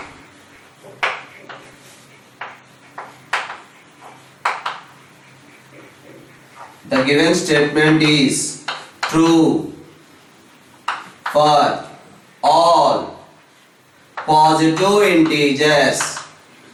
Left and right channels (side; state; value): both; identical; correlation 1.00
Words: given statement is true for all positive integers.